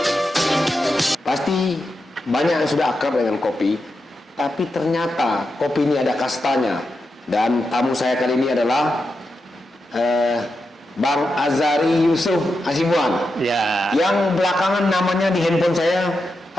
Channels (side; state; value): both; normal; correlation 0.87